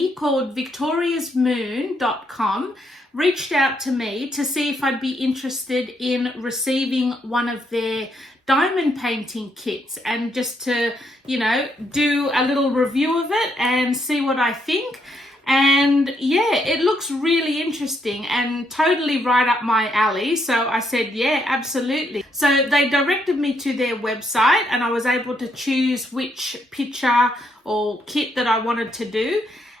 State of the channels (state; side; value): normal; both; correlation 0.75